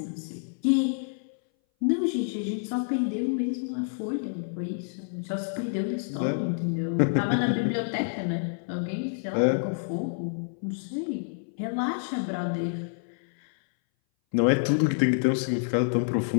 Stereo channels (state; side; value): silent; right; 58 dB below the other